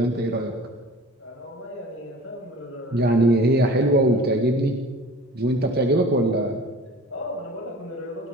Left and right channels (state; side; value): normal; both; correlation 0.43